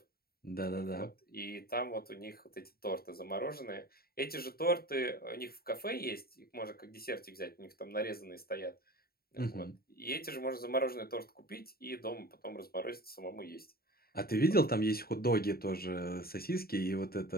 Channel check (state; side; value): late; right; 0.44 ms